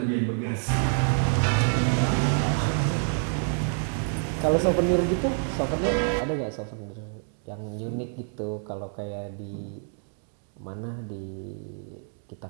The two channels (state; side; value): silent; left; 60 dB below the other